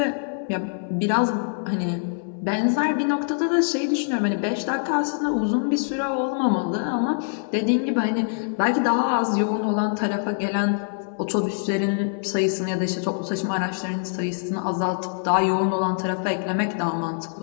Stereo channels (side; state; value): right; silent; 62 dB below the other